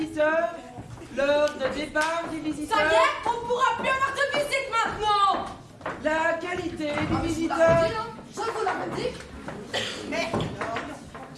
l'heure de départ du visiteur. Ça y est, on pourra plus avoir de visite maintenant. La qualité du visiteur. Je vous l'avais dit. Mais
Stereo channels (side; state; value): both; identical; correlation 1.00